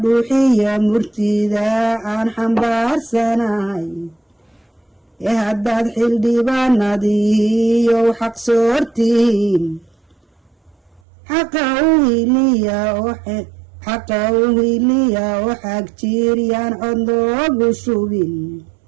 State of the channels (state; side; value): drops out; left; at 11.0 s